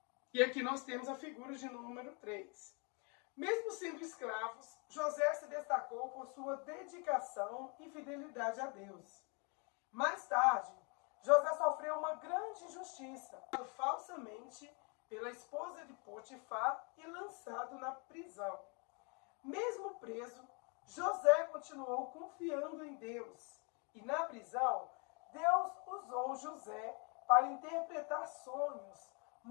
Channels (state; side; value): quieter; right; 34.1 dB